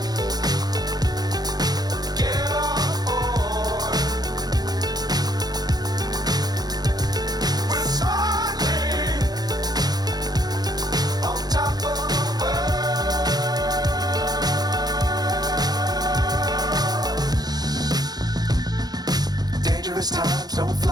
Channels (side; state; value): left; late; 0.19 ms